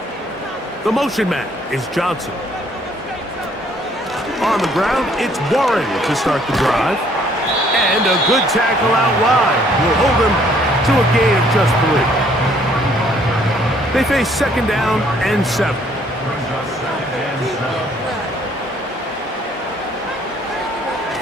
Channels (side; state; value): both; normal; correlation 0.63